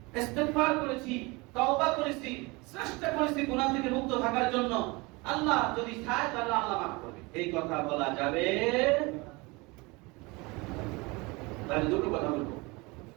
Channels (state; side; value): quieter; left; 25.2 dB